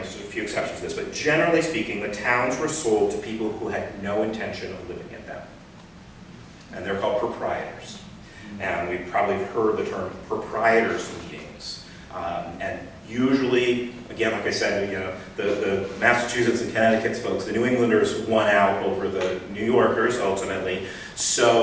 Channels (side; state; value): both; identical; correlation 1.00